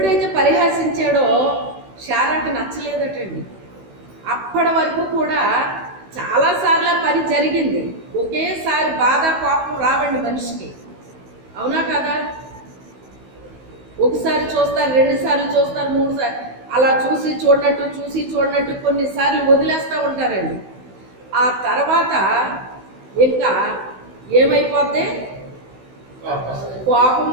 పరిహసించాడో శారాకి నచ్చలేదటండి. అప్పటి వరకు కూడా చాలాసార్లు పని జరిగింది. ఒకేసారి బాధ కోపం రావండి మనిషికి, అవునా కదా? ఒకసారి చూస్తారు, 2 సార్లు చూస్తారు, 3 సార్లు అలా చూసి చూడనట్టు కొన్నిసార్లు వదిలేస్తూ ఉంటారండి. ఆ తర్వాత ఇంకా ఏమైపోద్ది?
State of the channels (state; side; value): late; left; 16 ms